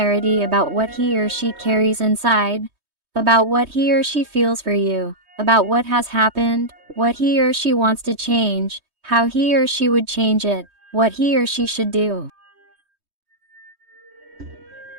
about what he or she carries inside, about what he or she feels for you, about what has happened, what he or she wants to change, how he or she would change it, what he or she should do.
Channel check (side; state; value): left; late; 3.2 ms